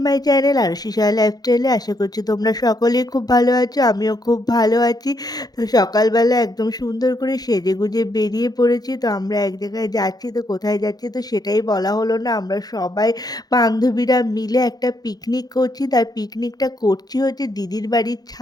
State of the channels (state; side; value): late; right; 0.19 ms